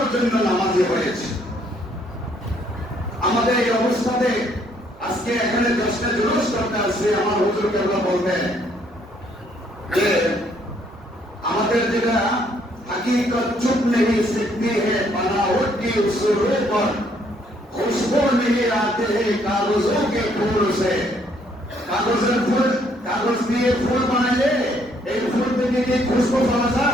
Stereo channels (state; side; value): normal; both; correlation 0.67